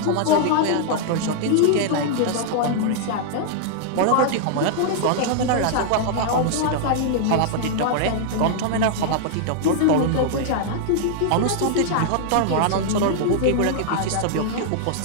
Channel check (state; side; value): different; both; correlation -0.01